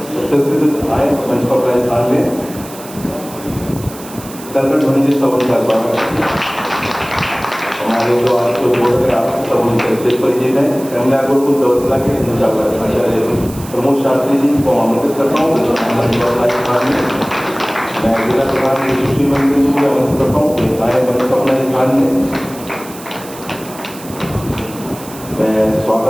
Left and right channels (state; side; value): noise; right; hiss, 16 dB below the sound